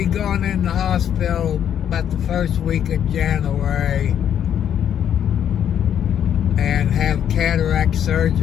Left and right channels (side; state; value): right; quieter; 9.4 dB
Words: going in the hospital about the first week of January and have cataract